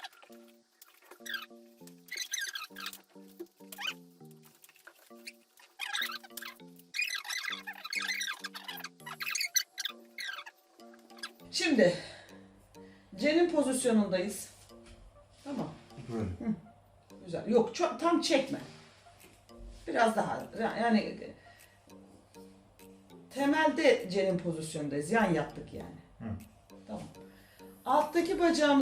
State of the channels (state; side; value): identical; both; correlation 1.00